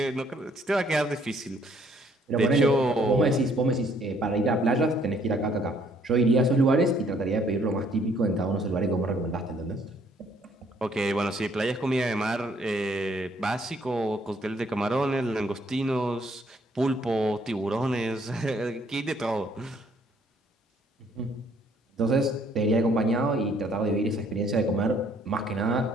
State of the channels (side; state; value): both; normal; correlation 0.65